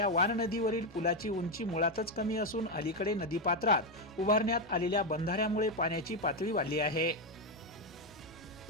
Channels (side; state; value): left; noise; hum, 27 dB below the sound